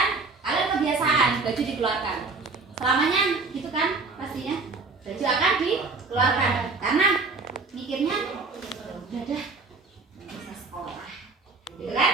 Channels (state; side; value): quieter; left; 4.0 dB